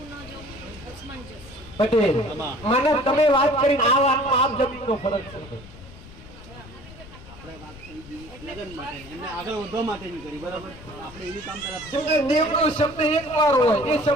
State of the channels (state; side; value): noise; left; rumble, 18 dB below the sound